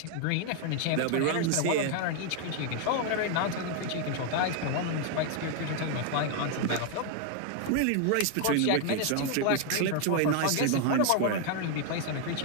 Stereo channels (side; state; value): both; different; correlation 0.01